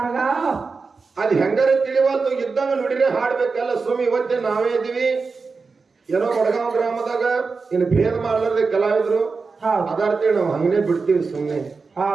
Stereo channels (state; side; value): quieter; left; 4.5 dB